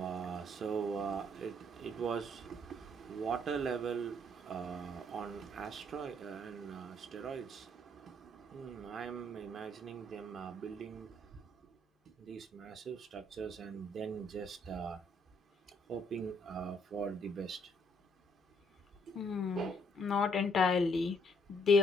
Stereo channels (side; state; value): both; normal; correlation 0.68